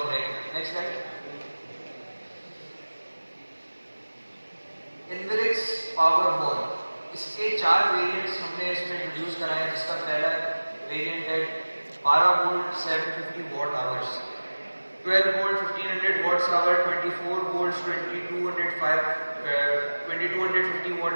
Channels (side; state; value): both; inverted; correlation -1.00